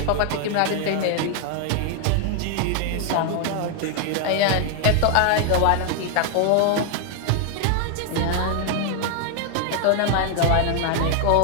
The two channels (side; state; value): both; different; correlation 0.00